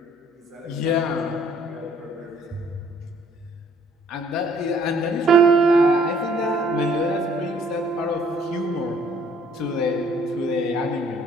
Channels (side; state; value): both; normal; correlation 0.60